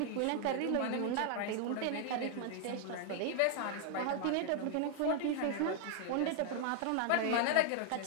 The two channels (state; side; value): different; both; correlation 0.00